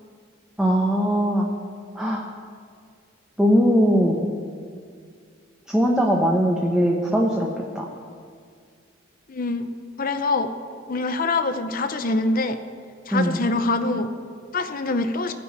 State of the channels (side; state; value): both; normal; correlation 0.62